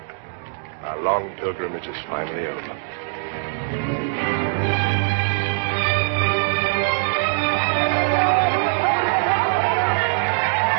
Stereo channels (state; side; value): silent; left; digital silence